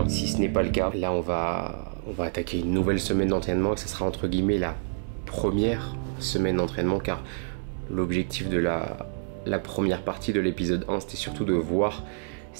si ce n'est pas le cas. Là on va attaquer une nouvelle semaine d'entraînement et ce sera entre guillemets la première semaine d'entraînement car l'objectif de la première partie de l'épisode 1 c'était surtout de voir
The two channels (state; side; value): silent; left; digital silence